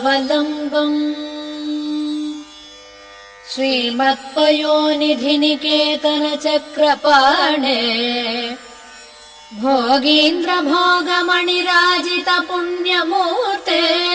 श्रीमत्पयोनिधिनिकेतन चक्रपाणे भोगीन्द्र भोगमणिराजित पुण्यमूर्ते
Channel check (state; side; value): identical; both; correlation 1.00